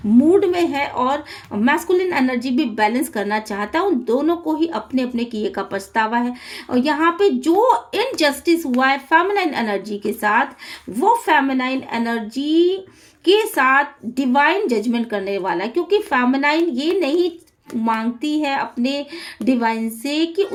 मूड में है, और मैस्कुलिन एनर्जी भी बैलेंस करना चाहता है। उन दोनों को ही अपने अपने किए का पछतावा है। और यहाँ पे जो इनजस्टिस हुआ है फेमिनाइन एनर्जी के साथ, वो फेमिनाइन एनर्जी के साथ डिवाइन जजमेंट करने वाला है, क्योंकि फेमिनाइन ये नहीं मांगती है अपने डिवाइन से कि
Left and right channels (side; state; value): both; identical; correlation 1.00